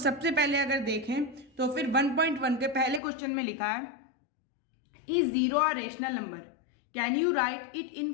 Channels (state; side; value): drops out; right; at 3.0 s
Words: पहले अगर देखें तो फिर 1.1 के पहले क्वेश्चन में लिखा है, is zero a rational number, can you right it in